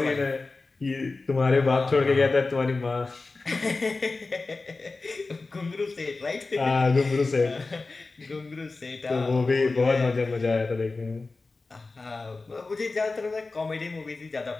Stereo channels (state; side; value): quieter; right; 3.7 dB